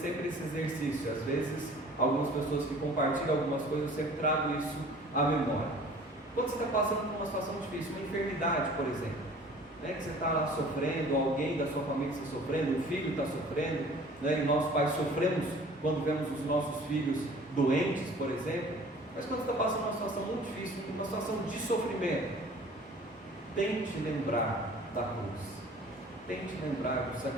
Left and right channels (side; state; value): both; normal; correlation 0.48